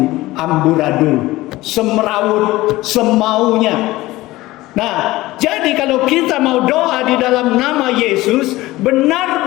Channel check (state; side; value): quieter; right; 18.3 dB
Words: amburadul, semrawut, semaunya. Nah, jadi kalau kita mau doa di dalam nama Yesus,